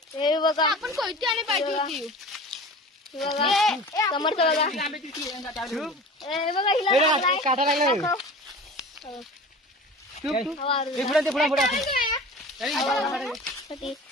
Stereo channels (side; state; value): both; normal; correlation 0.37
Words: हे बघा आपण कोयती आणि पाहिजे होती हे बघा समर्थ बघा आंब्याची पिशवी हे बघा हिला काटा लागला